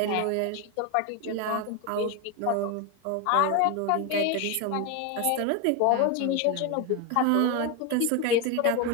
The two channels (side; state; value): both; different; correlation 0.02